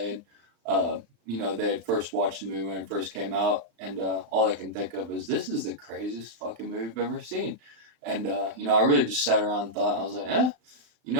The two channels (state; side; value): late; left; 35 ms